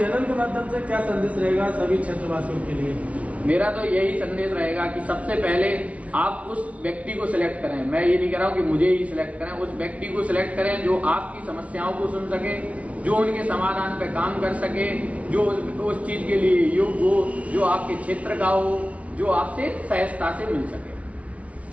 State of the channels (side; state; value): left; late; 0.065 ms